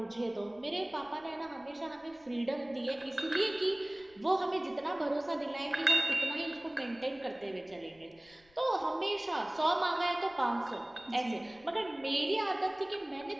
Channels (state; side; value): noise; left; rumble, 30 dB below the sound